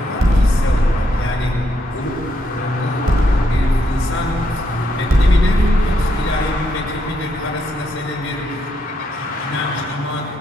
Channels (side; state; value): both; normal; correlation 0.77